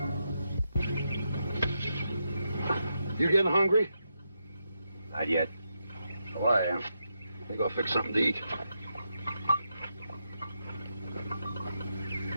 You getting hungry? Not yet. Oh, I am. You go fix something to eat.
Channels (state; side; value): inverted; both; correlation -0.84